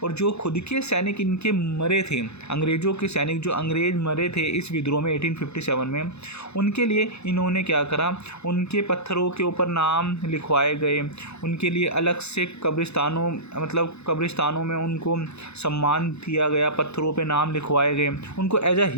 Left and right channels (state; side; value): late; right; 0.80 ms